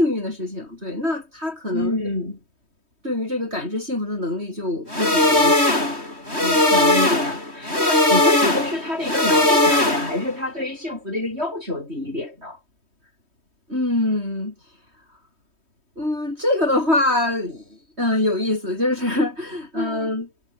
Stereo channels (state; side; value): late; left; 3.2 ms